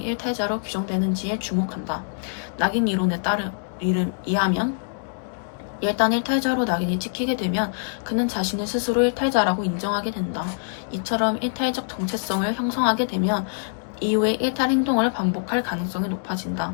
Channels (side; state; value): right; silent; digital silence